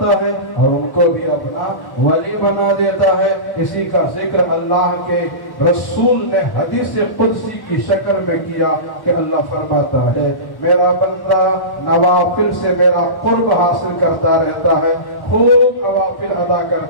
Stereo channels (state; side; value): late; right; 1.1 ms